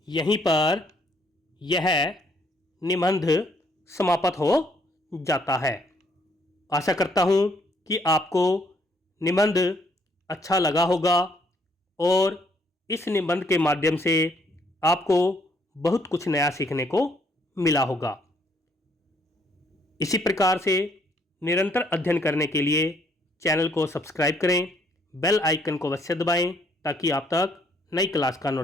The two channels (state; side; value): normal; both; correlation 0.68